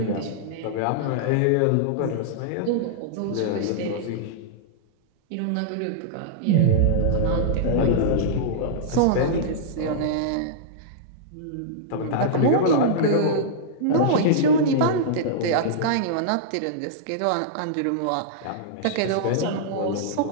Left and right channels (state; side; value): different; both; correlation -0.02